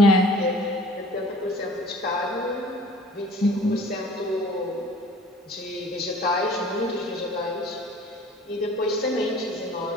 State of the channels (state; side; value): normal; both; correlation 0.48